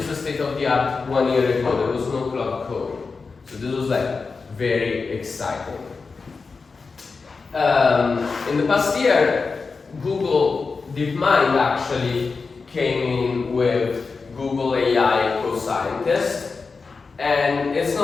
the state of the art 1 year ago. There was no cloud code, so this was very exciting. In the past year, Google DeepMind actually came in with Google AI co-scientist, and it's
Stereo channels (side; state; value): right; quieter; 4.5 dB